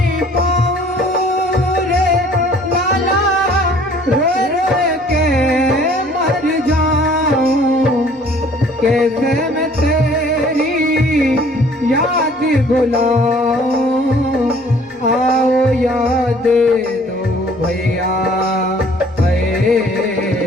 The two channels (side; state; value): both; normal; correlation 0.55